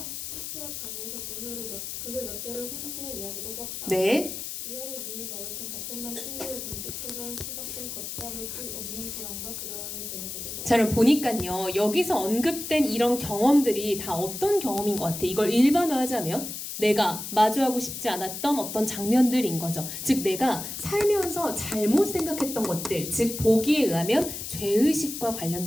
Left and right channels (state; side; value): noise; left; hiss, 7 dB below the sound